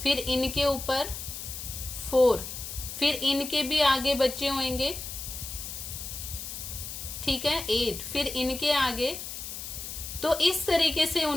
फिर इनके ऊपर 4, फिर इनके भी आगे बच्चे होंगे, ठीक है, 8, फिर इनके आगे। तो इस तरीके से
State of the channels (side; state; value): left; noise; hiss, 8 dB below the sound